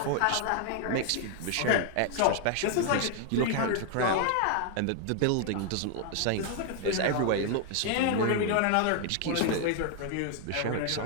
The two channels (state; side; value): different; both; correlation 0.00